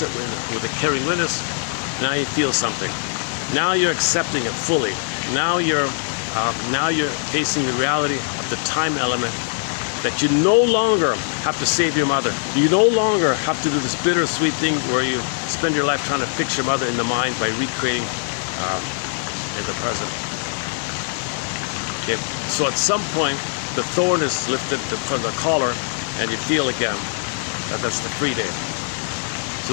it with a caring witness, now you feel something. Now you're accepting it fully. Now you're facing the reality of the time element, that you no longer have to save your mother. You no longer have to do this bittersweet thing where you spend your life trying to fix your mother in the mind by recreating in the present. Okay. So at some point, the thorn is lifted from the collar, and you feel again that that's the free day.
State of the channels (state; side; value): silent; right; digital silence